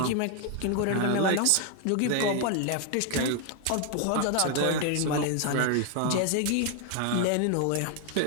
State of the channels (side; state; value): both; different; correlation 0.00